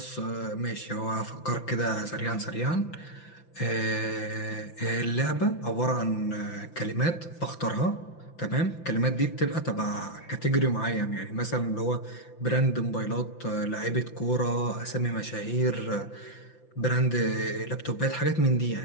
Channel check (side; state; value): right; late; 5.9 ms